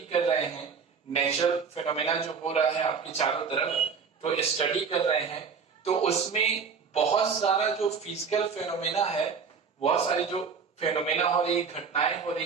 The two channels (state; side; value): quieter; left; 5.9 dB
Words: कर रहे हैं नेचुरल फेनोमेना जो हो रहा है आपके चारों तरफ, तो स्टडी कर रहे हैं, तो उसमें बहुत सारा जो फिजिकल फेनोमेना है, बहुत सारी जो फेनोमेना हो रही है, घटनाएं हो